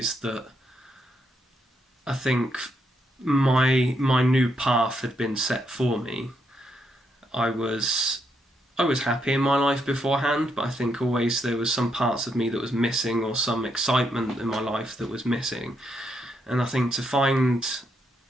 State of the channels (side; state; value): both; normal; correlation 0.78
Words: that I think my new path had been set for me. I was happy in my life beforehand, but I think always there was some parts of me that was missing, or some excitement in my life that was missing. And I think to